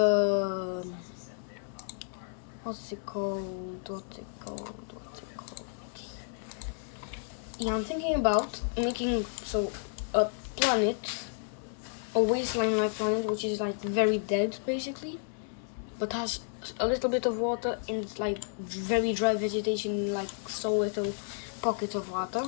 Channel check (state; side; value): silent; right; 57 dB below the other